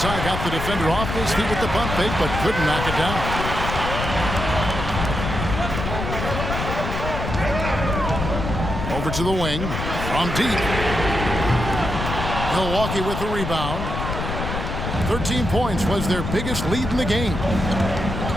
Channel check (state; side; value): noise; left; rumble, 4 dB below the sound